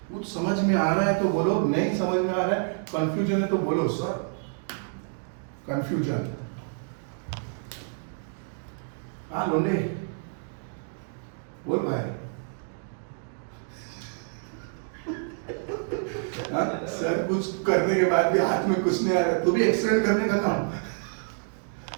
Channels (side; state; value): left; silent; 59 dB below the other